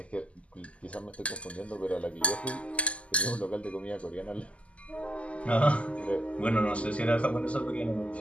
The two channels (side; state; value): right; late; 0.062 ms